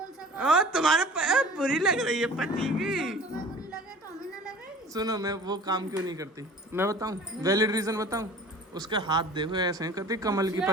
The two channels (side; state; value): both; normal; correlation 0.44